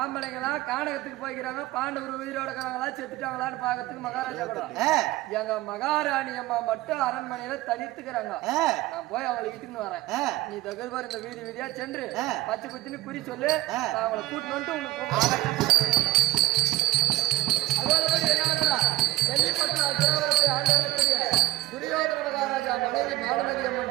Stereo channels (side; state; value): left; quieter; 17.3 dB